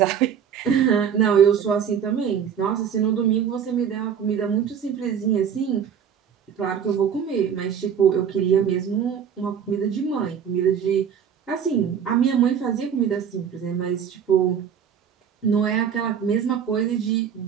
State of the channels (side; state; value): left; quieter; 8.0 dB